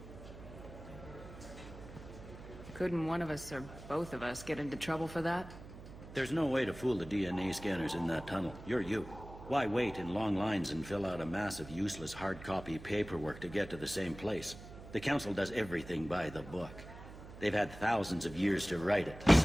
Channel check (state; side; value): noise; right; hum, 15 dB below the sound